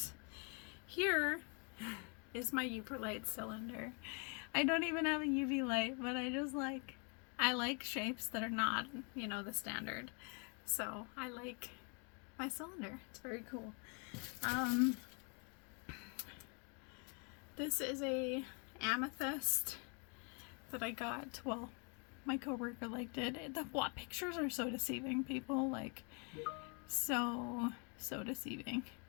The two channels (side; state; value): right; quieter; 36.5 dB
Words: Here is my Uperlite cylinder. I don't even have a UV light, but I like shapes that are not, you know, the standard. So I like my cylinder. It's very cool. This is a amethyst that I got. Well, my coworker liked it. The pictures are so deceiving, people. Like, so deceiving.